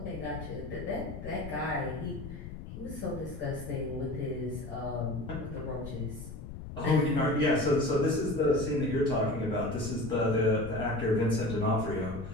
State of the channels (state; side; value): noise; left; rumble, 10 dB below the sound